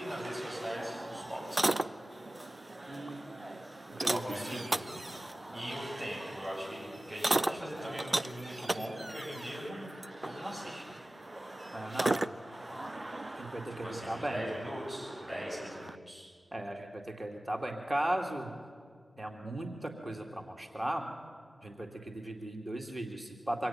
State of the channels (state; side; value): normal; both; correlation 0.96